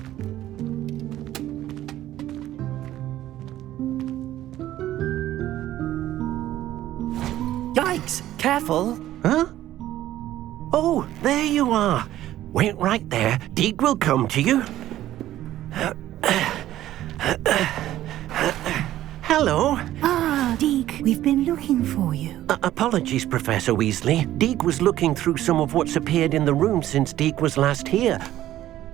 Careful! Huh? Oh, there you are. Wait right there. Deek will come to you. Hello. Ah, Deek, we've been looking for you. Apologies, Professor Weasley. Deek was looking through some of what's appeared in the room since Deek was last here.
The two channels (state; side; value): quieter; left; 13.6 dB